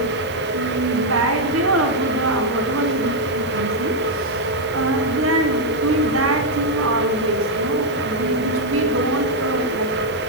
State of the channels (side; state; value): right; noise; hiss, 21 dB below the sound